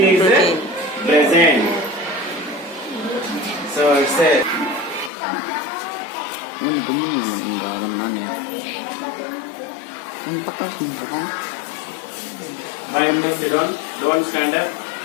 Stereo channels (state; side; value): drops out; right; at 5.1 s